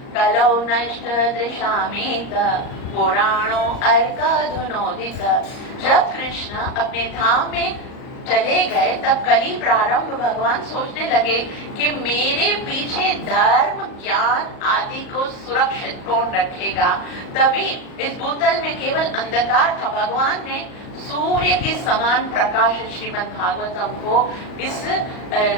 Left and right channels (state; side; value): late; right; 38 ms